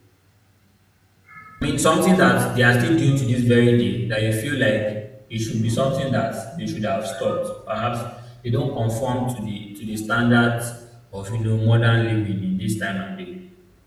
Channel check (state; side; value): identical; both; correlation 1.00